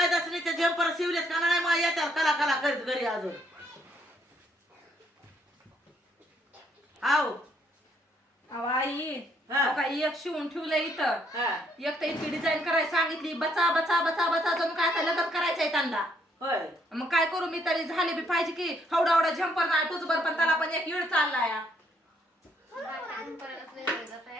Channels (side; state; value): both; normal; correlation 0.70